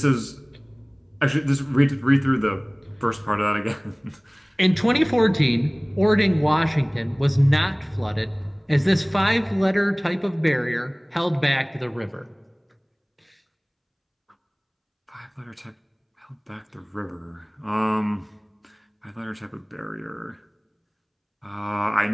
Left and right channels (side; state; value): both; identical; correlation 1.00